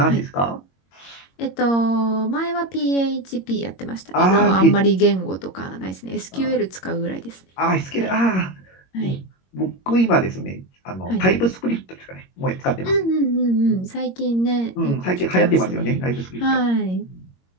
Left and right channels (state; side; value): late; right; 22 ms